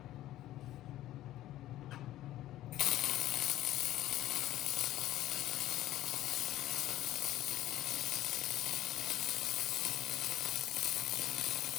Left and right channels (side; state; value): right; quieter; 14.3 dB